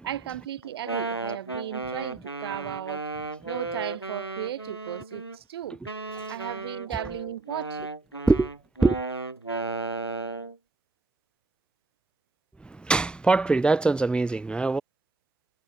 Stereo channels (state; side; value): quieter; left; 3.5 dB